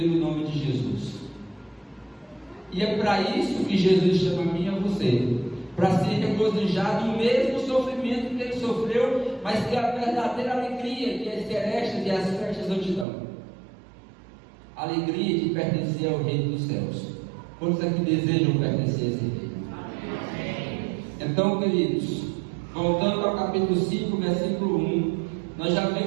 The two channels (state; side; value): drops out; left; at 13.1 s